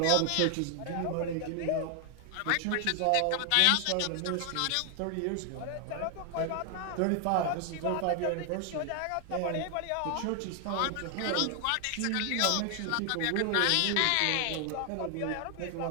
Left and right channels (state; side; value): different; both; correlation 0.00